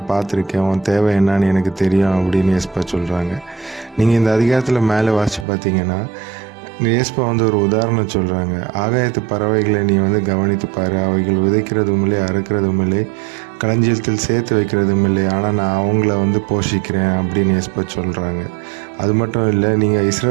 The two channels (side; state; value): left; drops out; at 5.5 s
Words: பார்த்துருக்கேன், உன் தேவை என்னன்னு எனக்கு தெரியும் அப்படின்னு ஏசப்பா சொல்கிறாங்க. நீங்கள் இந்த அதிகாரத்தில் மேலே வாசித்து பார்த்தீங்கன்னா ஏசப்பா ஒரு உதாரணம் சொல்கிறாங்க. ஆகாயத்து பறவைகளை நீ கவனித்து பாரு, அவைகள் விதைக்கிறதும் இல்லை, அறுக்கிறதும் இல்லை, களஞ்சியத்தில் சேர்த்து வைக்கிறதும் இல்லை, ஆனால் நான் அவங்கள போஷிக்கிறேன் அப்படின்னு ஏசப்பா சொல்கிறாங்க. அது மட்டும் இல்லை, நீங்கள்